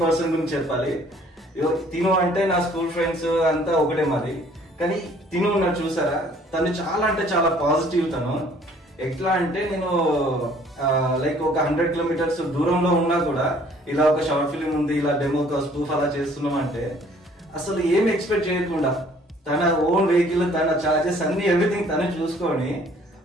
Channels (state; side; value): normal; both; correlation 0.57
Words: పర్సన్ గురించి చెప్పాలి. తిను అంటే నా స్కూల్ ఫ్రెండ్స్ అంతా ఒకటే మరి. కానీ తిను ఉన్నాడు చూసారా, తను చాలా అంటే చాలా పాజిటివ్. తను ఎట్లా అంటే నేను లైక్ ఒక 100 కిలోమీటర్స్ దూరంలో ఉన్నా కూడా ఇలా ఒక షార్ట్ ఫిలిం ఉంది, ఇలా డెమో స్పూఫ్ అలా చేస్తున్నాం అంటే అసలు ఏం ఎక్స్పెక్ట్ చేయకుండా తన ఓన్ వెహికల్, తన చార్జెస్ అన్ని ఎవ్రీథింగ్ తను చూసుకొని